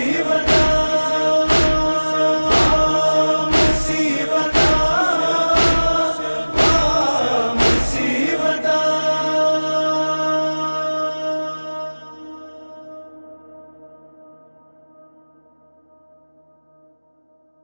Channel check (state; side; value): inverted; both; correlation -1.00